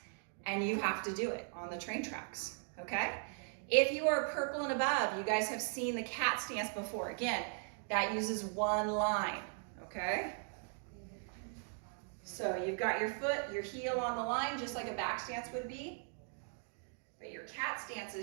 and you have to do it on the train tracks, okay? If you are purple and above, you guys have seen the cat stance before. Again, that uses 1 line, okay? So you've got your foot, your heel on the line, just like a back stance would be. But your cat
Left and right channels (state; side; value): silent; left; 52 dB below the other